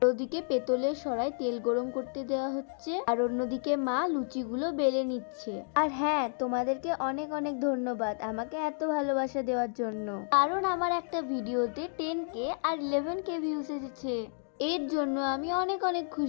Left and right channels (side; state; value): right; silent; digital silence